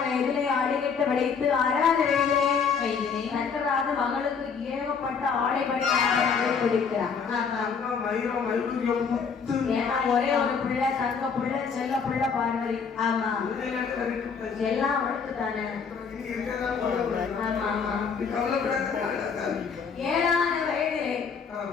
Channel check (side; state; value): right; quieter; 6.0 dB